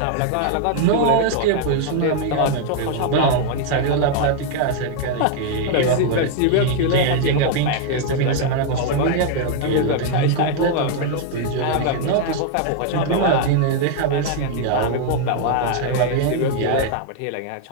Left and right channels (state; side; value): different; both; correlation 0.00